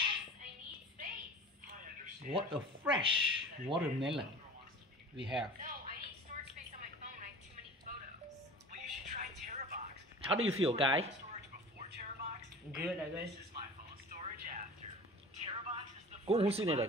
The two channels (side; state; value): both; normal; correlation 0.39